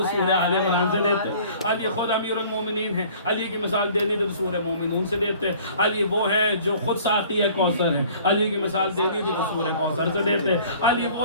سورہ آل عمران سے دیتے۔ علی خود امیر المومنین ہے، علی کی مثال دینی تو سورہ مومنون سے دیتے۔ علی وہ ہے جو خود ساقی کوثر ہے، علی کی مثال دینی تھی تو سورہ کوثر سے دیتے۔ علی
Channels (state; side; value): inverted; both; correlation -0.51